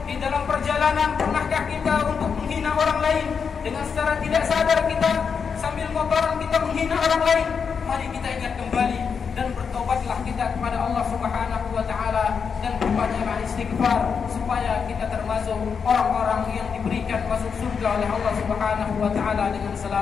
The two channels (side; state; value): right; quieter; 6.2 dB